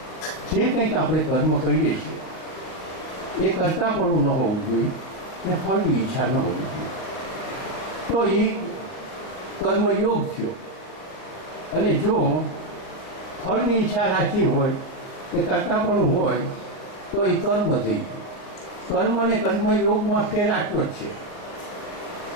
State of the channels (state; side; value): late; right; 39 ms